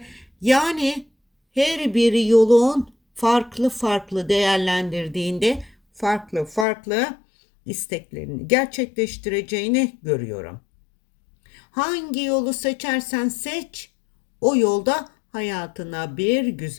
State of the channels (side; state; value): right; drops out; at 6.7 s